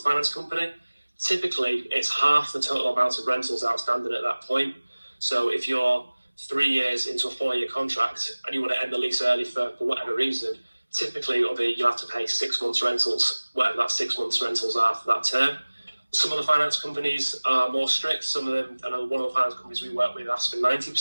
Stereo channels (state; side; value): inverted; both; correlation -1.00